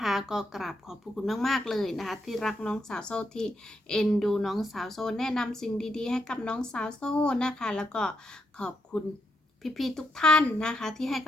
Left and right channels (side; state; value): both; normal; correlation 0.81